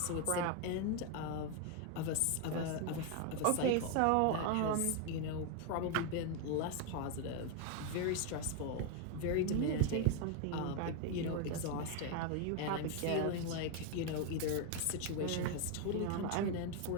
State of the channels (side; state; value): both; different; correlation 0.01